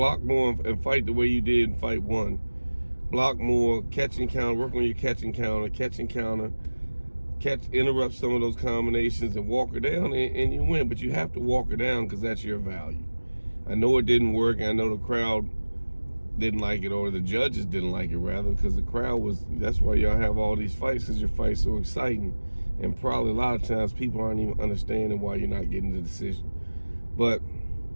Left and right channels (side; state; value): both; inverted; correlation -1.00